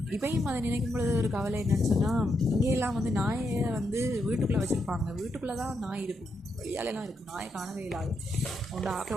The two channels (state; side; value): normal; both; correlation 0.81